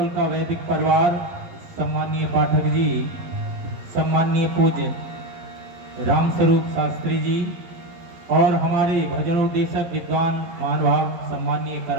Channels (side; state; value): left; late; 11 ms